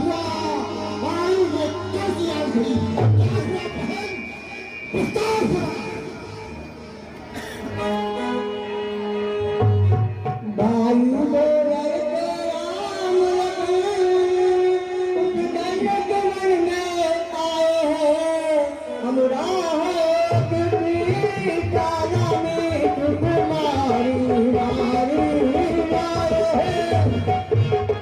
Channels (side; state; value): both; identical; correlation 1.00